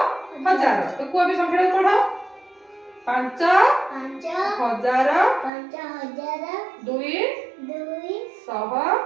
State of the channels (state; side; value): drops out; left; at 5.5 s